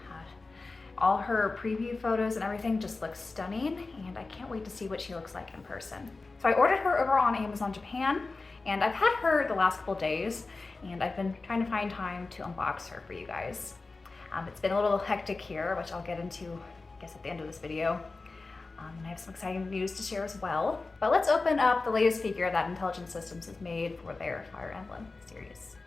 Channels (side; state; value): right; quieter; 3.7 dB